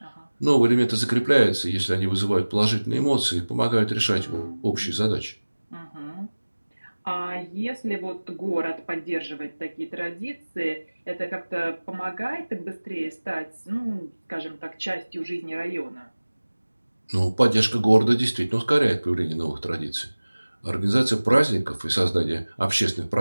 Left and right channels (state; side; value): inverted; both; correlation -1.00